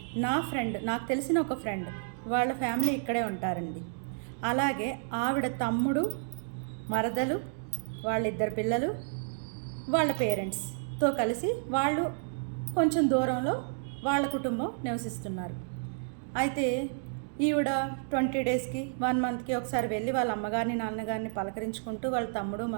నాకు తెలిసిన ఒక ఫ్రెండ్, వాళ్ళ ఫ్యామిలీ ఇక్కడే ఉంటారండి. అలాగే ఆవిడ తమ్ముడు, మరదలు, వాళ్ళిద్దరు పిల్లలు, వాళ్ళ పేరెంట్స్తో కలిసి వాళ్ళు కొంచెం దూరంలో వాళ్ళ కుటుంబం నివసిస్తున్నారు. అయితే ఈవిడ 20 డేస్కి 1 మంత్కి ఒకసారి వెళ్ళి వాళ్ళ అమ్మగారిని నాన్నగారిని పలకరించుకుంటూ వాళ్ళ తమ్ముడు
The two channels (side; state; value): left; silent; digital silence